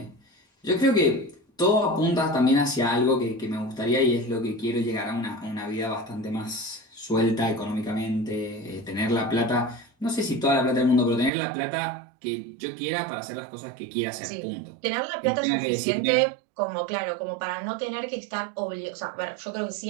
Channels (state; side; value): drops out; left; at 11.3 s